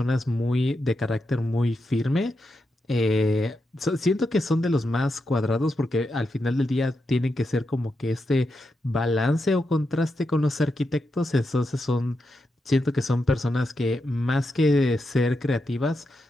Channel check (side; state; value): both; normal; correlation 0.86